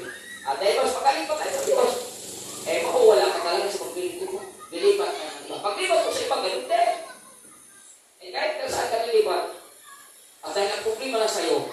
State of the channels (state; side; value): identical; both; correlation 1.00